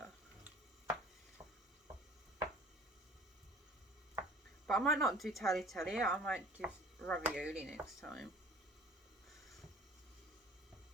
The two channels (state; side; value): normal; both; correlation 0.49